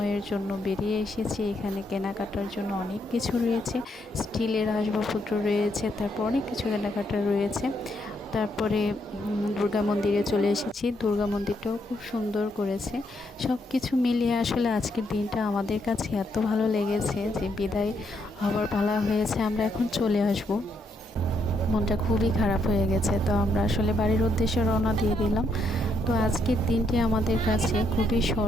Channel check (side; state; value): both; normal; correlation 0.76